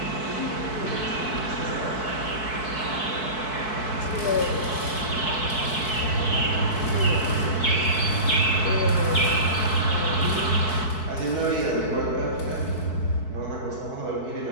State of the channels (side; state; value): right; late; 4.6 ms